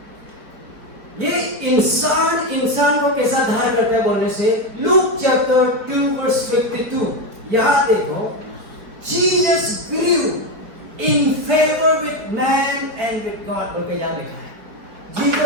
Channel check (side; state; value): left; late; 4.7 ms